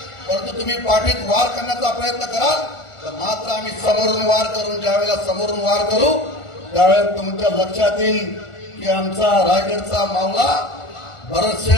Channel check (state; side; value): late; right; 1.4 ms